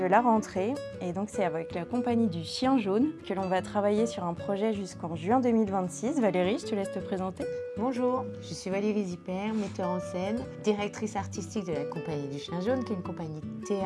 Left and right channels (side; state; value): both; identical; correlation 1.00